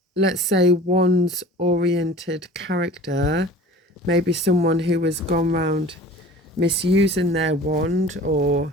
let's say, wands-oriented character. Maybe someone who has gone round misusing their wand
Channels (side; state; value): both; normal; correlation 0.43